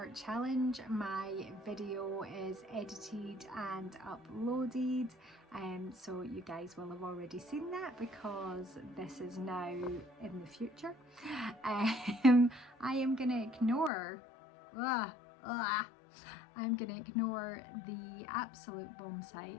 challenge. My video is edited and uploaded, so you guys will have already seen that because this is now in the future. I am gonna ignore I'm gonna ignore the absolute bomb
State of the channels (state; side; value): drops out; right; at 13.9 s